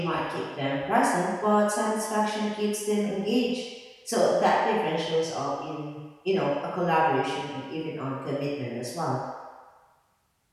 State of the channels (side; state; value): both; identical; correlation 1.00